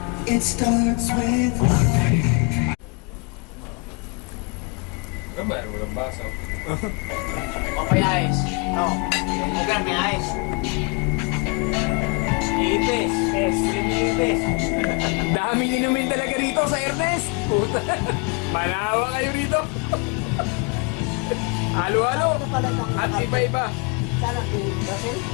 Ano ba, walang baso. Okay, ayos. No. Okay, may ayos. Ipis. Pes. Ipis. Dami inumin talaga rito sa Ernest. Puta. Manawa kayo rito. Halo-halo. At iba-iba. Sana kung Brazil.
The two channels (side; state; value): right; quieter; 32.1 dB